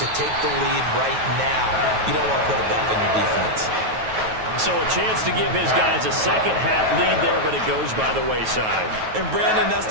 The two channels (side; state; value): left; late; 9.3 ms